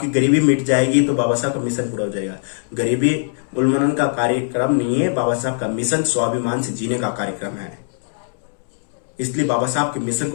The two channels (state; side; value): silent; right; digital silence